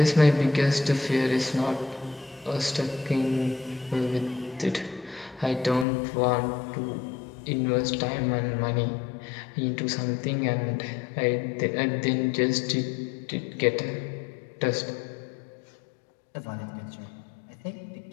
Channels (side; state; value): right; drops out; at 5.9 s